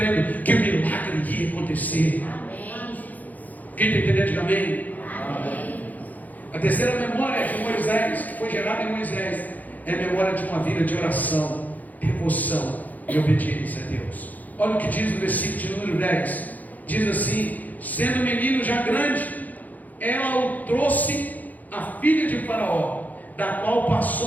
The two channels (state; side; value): late; right; 0.081 ms